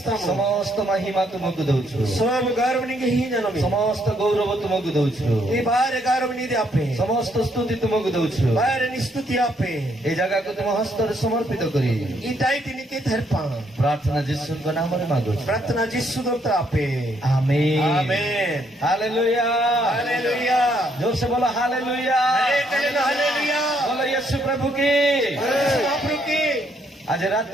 ସମସ୍ତ ମହିମା ତୁମକୁ ଦଉଛୁ सब गौरव निंगे ही जनमी ସମସ୍ତ ଗୌରବ ତୁମକୁ ଦଉଛୁ ये बाहर गौरव नी दे आपे ସମସ୍ତ ସ୍ତୁତି ତୁମକୁ ଦଉଛୁ बाहर निस्तुति आपे এই ଜାଗାକୁ ତୁମ ହସ୍ତରେ ସମର୍ପିତ କରି ई दाई तिने के थरपा ପ୍ରାର୍ଥନା ଯୀଶୁଙ୍କ ନାମରେ ମାଗୁଛୁ प्रार्थना जिसु दोता आपे आमीन आमेन हालेलुया हालेलुया जोर से बोलो हालेलुया हालेलुया बोलो यीशु प्रभु की महाप्रभु की आज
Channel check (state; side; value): normal; both; correlation 0.71